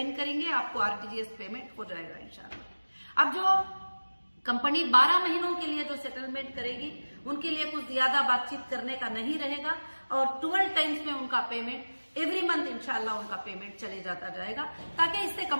करेंगे, आपको आरटीजीएस पेमेंट हो जाएगा इंशाल्लाह। अब जो कंपनी 12 महीनों के लिए जो सेटलमेंट करेगी उनके लिए कुछ ज्यादा बातचीत करने का नहीं रहेगा और 12 टाइम्स में उनका पेमेंट एवरी मंथ इंशाल्लाह उनका पेमेंट चले जाता जाएगा, ताकि इससे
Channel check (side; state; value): both; inverted; correlation -1.00